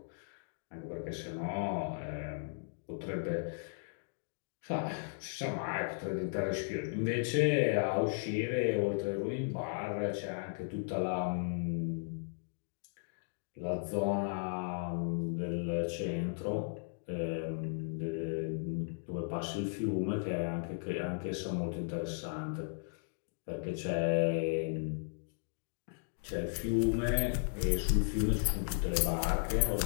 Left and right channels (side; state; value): right; silent; digital silence